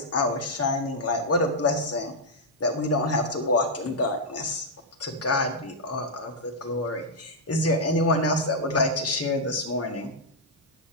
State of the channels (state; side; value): normal; both; correlation -0.06